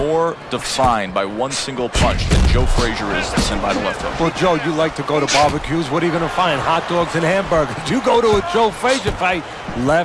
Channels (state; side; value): identical; both; correlation 1.00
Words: defined by one single punch than Joe Frazier is than by the left hook. Well, Joe, you like to go to barbecues. What are you going to find? Hot dogs and hamburgers. You go to a Joe Frazier fight,